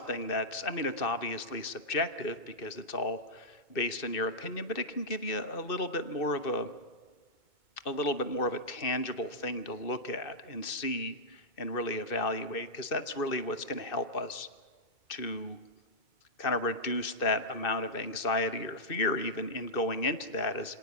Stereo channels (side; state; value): right; late; 2.6 ms